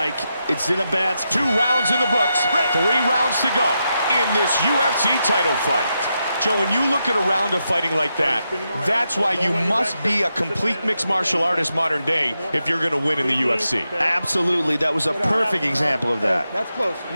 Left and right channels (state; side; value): inverted; both; correlation -0.86